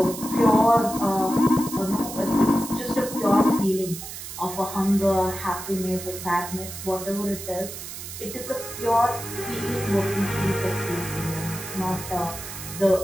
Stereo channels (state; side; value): noise; right; hiss, 10 dB below the sound